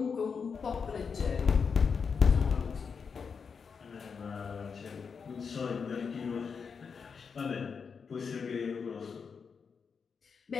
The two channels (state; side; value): quieter; right; 5.8 dB